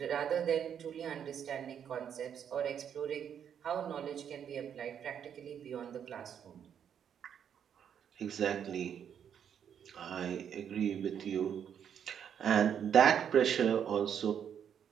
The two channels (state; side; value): quieter; left; 8.5 dB